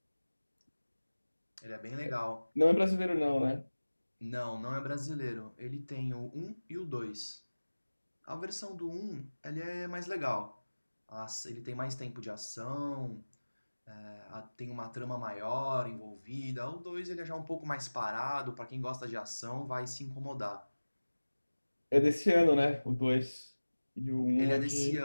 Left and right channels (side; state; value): both; inverted; correlation -1.00